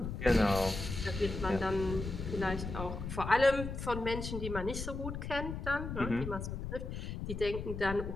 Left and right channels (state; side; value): noise; left; rumble, 6 dB below the sound